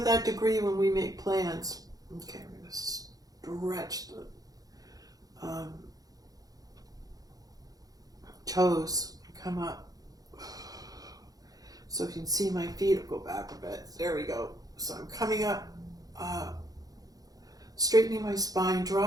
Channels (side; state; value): left; late; 0.18 ms